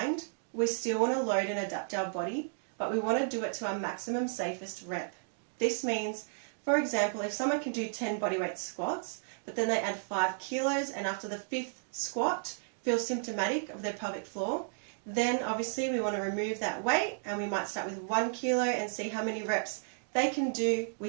we still want to load and adapt our body, but we want to do it to our maximum safest rep. This means, for example, if someone can do 10 bodyweight squats, but then they add 5 kilos and after the 5th squat feel symptomatic of their pelvic floor, then obviously we want to remove that weight and we might start with 1 kilo and see how many reps they can do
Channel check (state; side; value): silent; left; digital silence